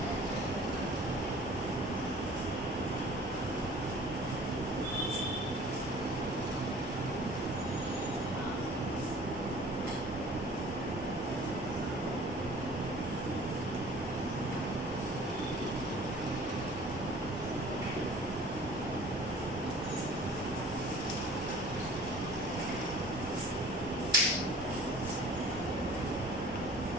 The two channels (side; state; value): both; normal; correlation 0.47